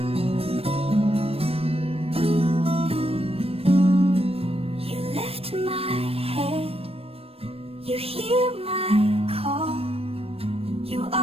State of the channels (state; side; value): late; left; 0.28 ms